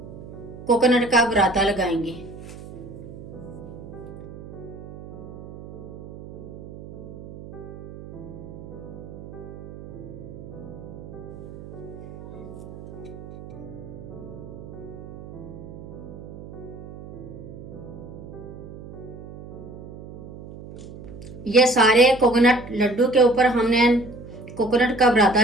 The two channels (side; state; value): right; noise; hum, 14 dB below the sound